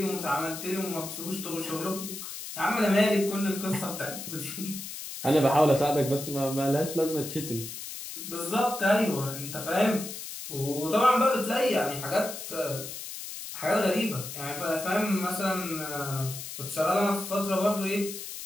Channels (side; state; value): left; noise; hiss, 9 dB below the sound